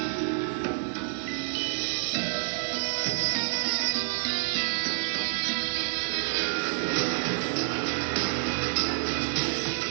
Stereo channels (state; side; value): silent; left; 59 dB below the other